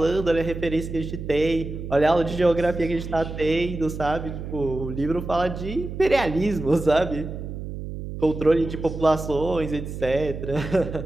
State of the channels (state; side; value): noise; right; hum, 8 dB below the sound